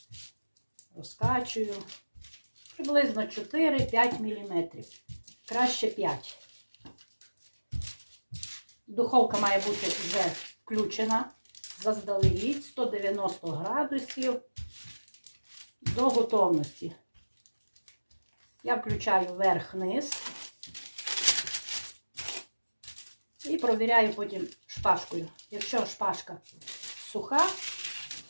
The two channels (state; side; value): inverted; both; correlation -1.00